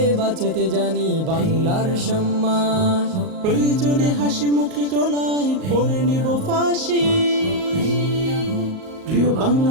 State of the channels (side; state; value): left; late; 38 ms